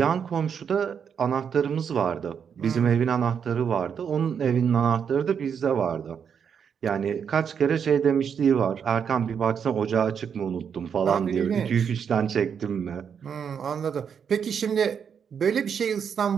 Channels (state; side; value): quieter; left; 7.3 dB